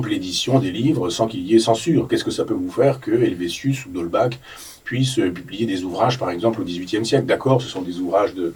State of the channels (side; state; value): both; identical; correlation 1.00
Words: l'édition des livres sans qu'il y ait censure. Qu'est-ce que ça peut vous faire que Helvétius ou d'Holbach puissent publier des ouvrages par exemple au XVIIIe siècle? D'accord, ce sont des ouvrages